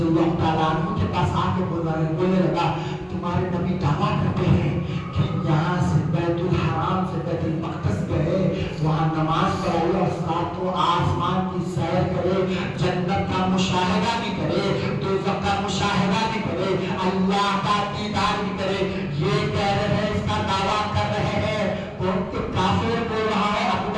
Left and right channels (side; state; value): both; identical; correlation 1.00